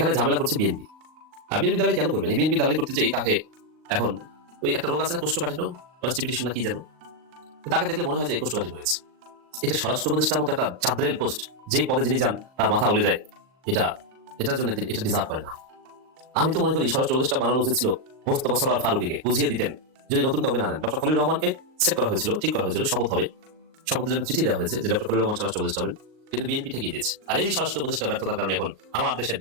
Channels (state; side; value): late; left; 38 ms